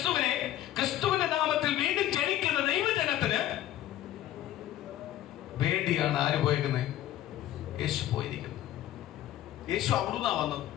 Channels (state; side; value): quieter; right; 13.2 dB